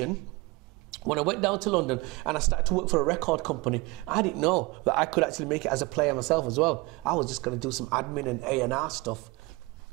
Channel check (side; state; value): left; quieter; 24.3 dB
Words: when I went down to London and I started to work for a record company, I didn't know that I could actually make it as a player myself as well. I was just going to do some admin and A&R stuff.